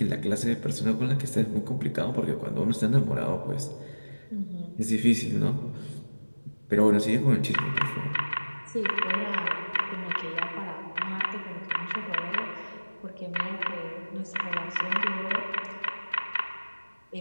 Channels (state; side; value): inverted; both; correlation -1.00